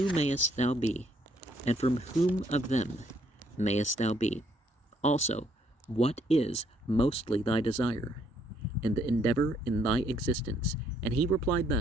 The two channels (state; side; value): normal; both; correlation 0.69